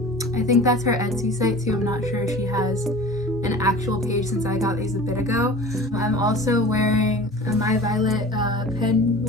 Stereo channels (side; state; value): both; normal; correlation 0.39